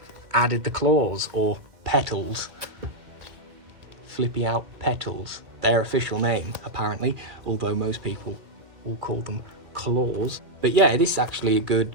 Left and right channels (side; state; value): left; late; 2.3 ms